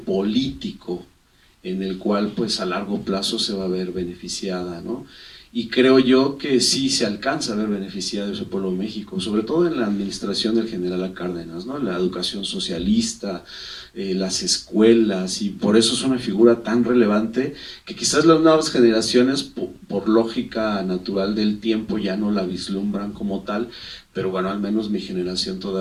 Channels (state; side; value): identical; both; correlation 1.00